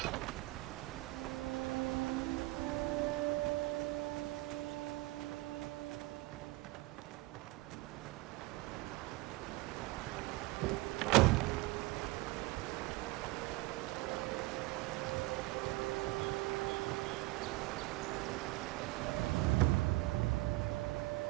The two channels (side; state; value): left; quieter; 20.7 dB